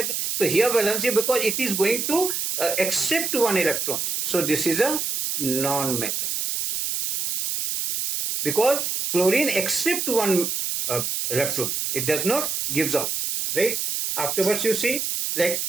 So here valency, because it is going to accept 1 electrons. So this is a non-metal. Because chlorine accepts 1 electrons. It does not gives out. Right? Afterwards you see, like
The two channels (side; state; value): right; noise; hiss, 1 dB below the sound